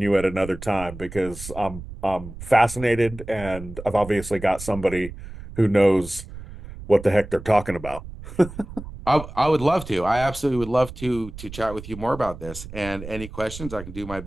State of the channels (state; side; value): noise; right; rumble, 13 dB below the sound